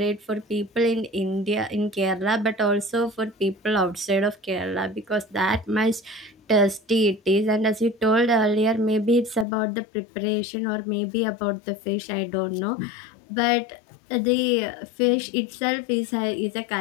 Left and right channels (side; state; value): right; drops out; at 9.5 s